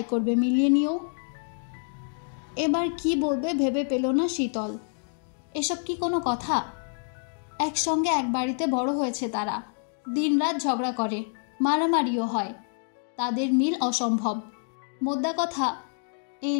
করবে, মিলিয়ে নিও। এবার কি বলবে ভেবে পেল না শীতল। এসব কি কোনো কথা? একসঙ্গে এক বাড়িতে বড় হয়েছে তারা। দিনরাত ঝগড়া করে, মারামারিও হয়। তাদের মিল অসম্ভব। মোদ্দা কথা, এই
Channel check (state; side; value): silent; right; 60 dB below the other